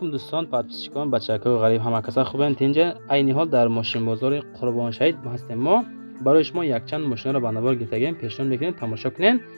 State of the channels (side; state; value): both; inverted; correlation -1.00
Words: дӯстон, подписчикон, бачакаҳои ғариб, ҳама каса хубанд? Инҷа айни ҳол дар мошинбозори Қурбоншаҳид ҳастем. Мо барои шумо якчанд мошинро ба навор гирифтагем, пешниҳод мекунем тамошо кунем,